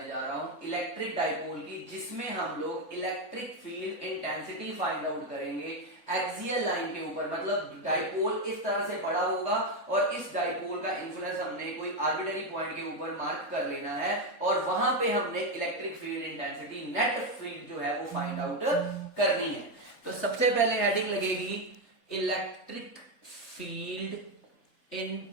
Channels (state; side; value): late; right; 3.8 ms